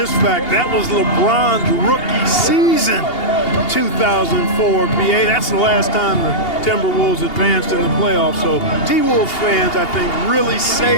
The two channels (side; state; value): right; late; 2.8 ms